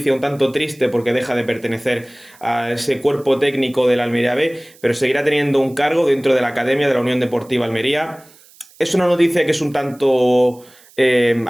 un tanto triste porque deja de pertenecer a ese cuerpo técnico del Almería B, pero seguirá teniendo un cargo dentro de la Academia de la Unión Deportiva Almería. Es una noticia que es un tanto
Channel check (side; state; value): right; noise; hiss, 26 dB below the sound